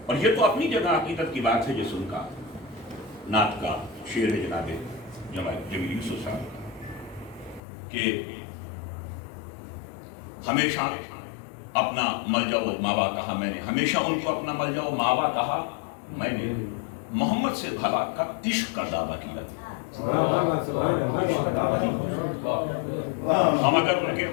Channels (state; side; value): drops out; right; at 7.6 s